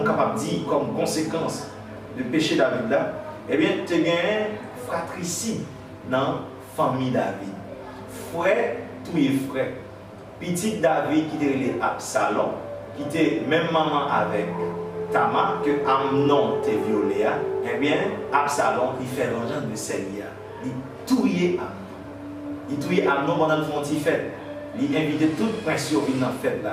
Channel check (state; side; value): identical; both; correlation 1.00